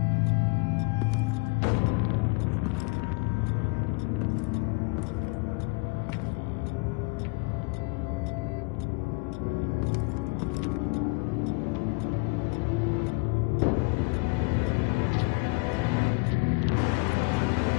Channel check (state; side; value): quieter; right; 29.8 dB